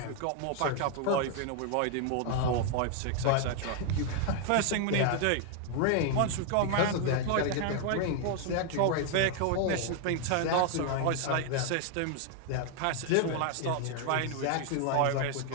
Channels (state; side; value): different; both; correlation 0.00